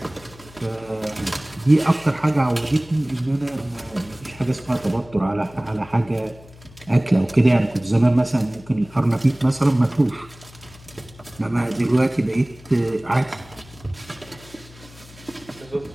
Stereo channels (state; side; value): noise; left; hum, 22 dB below the sound